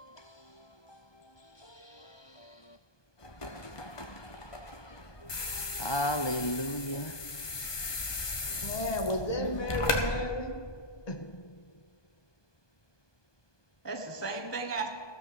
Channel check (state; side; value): late; right; 1.2 ms